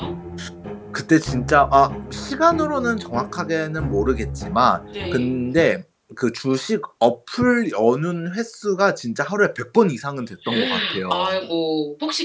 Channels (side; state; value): both; identical; correlation 1.00